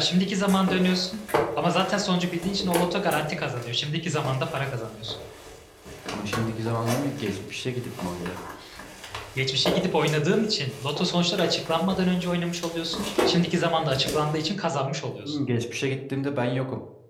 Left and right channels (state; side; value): identical; both; correlation 1.00